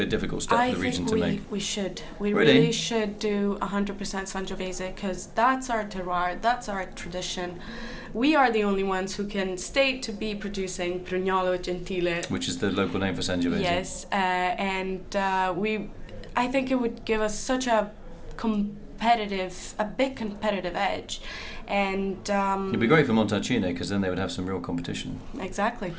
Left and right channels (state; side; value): identical; both; correlation 1.00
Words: a difficult step for the region to make? I think we should. We really should do 100% Sangiovese, because that's our terroir, that's our tradition. We are the only ones who can state to be producing Prugnolo Gentile, which is the local name for Sangiovese. Yes, I think it would give us such a big competitive edge, and it'd be great for Montalcino, because then they would have some real competition. Exactly.